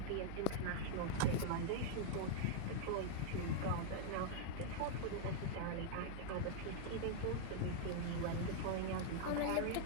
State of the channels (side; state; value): both; different; correlation -0.01